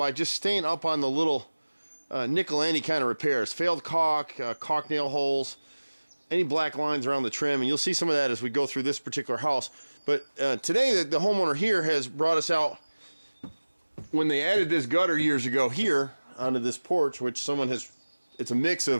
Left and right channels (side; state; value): both; inverted; correlation -1.00